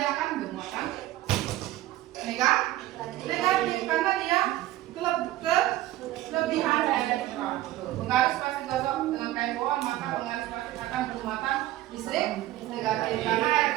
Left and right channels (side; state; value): left; quieter; 15.5 dB